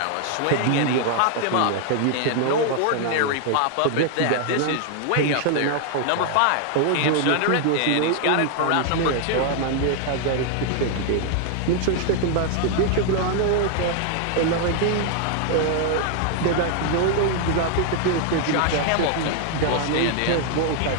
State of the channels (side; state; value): both; different; correlation 0.00